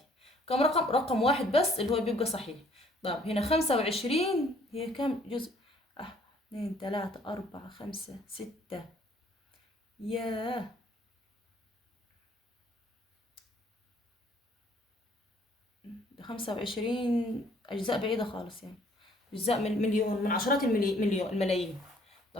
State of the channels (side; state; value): both; normal; correlation 0.61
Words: كم رقم؟ رقم واحد بس اللي هو بيبقى صحيح. طب هنا 25 هي كم جزء؟ 2 3 4 5 6. ياه، 25 أجزاء بعيدة خالص يعني. أجزاء من مليون، من عشرات الملايين.